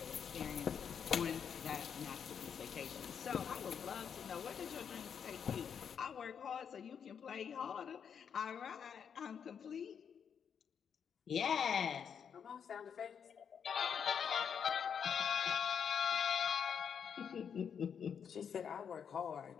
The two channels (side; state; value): right; quieter; 7.4 dB